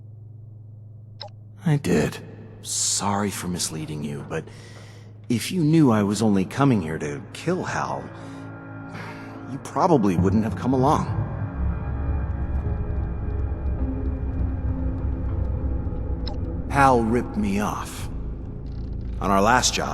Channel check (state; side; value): identical; both; correlation 1.00